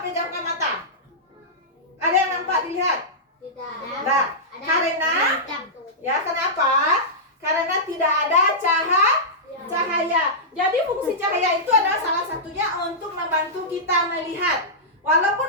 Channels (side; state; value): both; normal; correlation -0.13